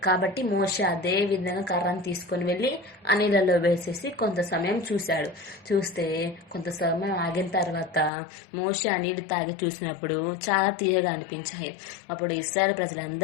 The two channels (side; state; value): right; drops out; at 8.1 s